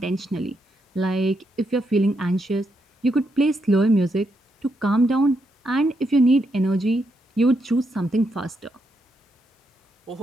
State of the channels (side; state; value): both; normal; correlation 0.80